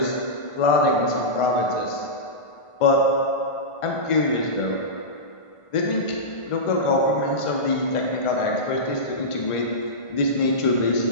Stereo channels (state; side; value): late; right; 1.5 ms